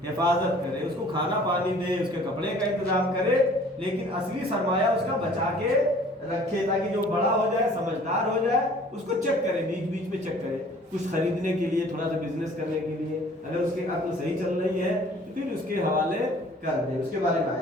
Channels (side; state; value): both; normal; correlation 0.52